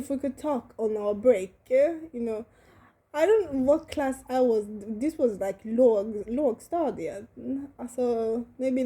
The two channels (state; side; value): identical; both; correlation 1.00